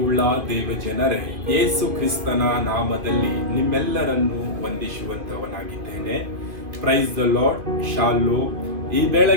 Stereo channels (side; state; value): left; late; 2.5 ms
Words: ದೇವಜನರೇ, ಯೇಸು ಕ್ರಿಸ್ತನ ನಾಮದಲ್ಲಿ ನಿಮ್ಮೆಲ್ಲರನ್ನು ವಂದಿಸುವಂತವನಾಗಿದ್ದೇನೆ. Praise the Lord. ಶಾಲೋ. ಈ